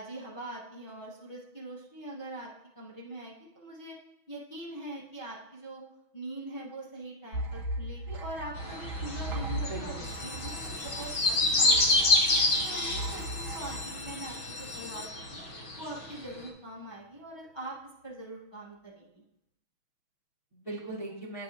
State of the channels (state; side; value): late; right; 6.3 ms